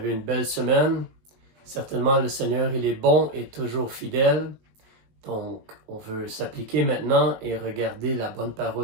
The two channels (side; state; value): left; late; 19 ms